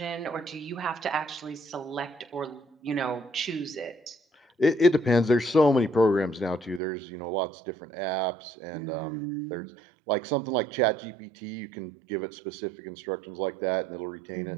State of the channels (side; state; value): left; drops out; at 6.8 s